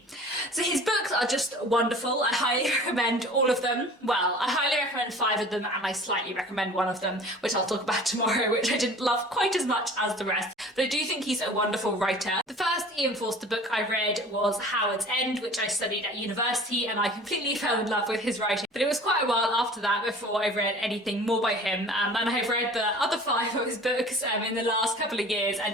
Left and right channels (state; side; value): normal; both; correlation 0.44